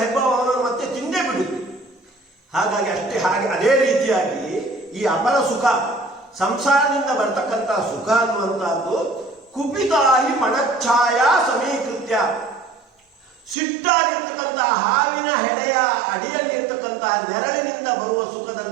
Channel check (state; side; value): drops out; left; at 13.6 s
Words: ಹೆಬ್ಬಾವು ಅವನನ್ನು ಮತ್ತೆ ತಿಂದೇ ಬಿಡುತ್ತೆ. ಹಾಗಾಗಿ ಅದೇ ರೀತಿಯಾಗಿ ಈ ಅಪರ ಸುಖ, ಸಂಸಾರದಿಂದ ಬರ್ತಕ್ಕಂಥ ಸುಖ ಅನ್ನುವಂಥದ್ದು ಕುಪಿತಾಹಿ ಮಣಚ್ಛಾಯ ಸಮೀಕೃತ್ಯ, ಸಿಟ್ಟಾಗಿರ್ತಕ್ಕಂತಹ ಹಾವಿನ ಹೆಡೆಯ ಅಡಿಯಲ್ಲಿರ್ತಕ್ಕಂತಹ ನೆರಳಿನಿಂದ ಬರುವ